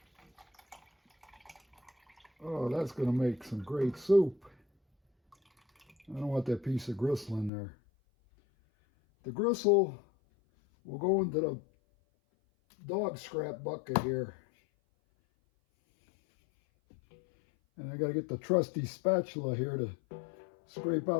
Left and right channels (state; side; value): drops out; right; at 7.5 s